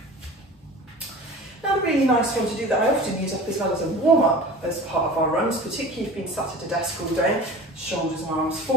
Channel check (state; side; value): normal; both; correlation 0.37